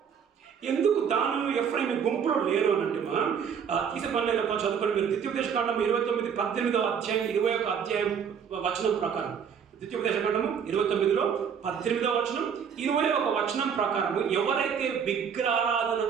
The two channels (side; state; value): left; quieter; 7.3 dB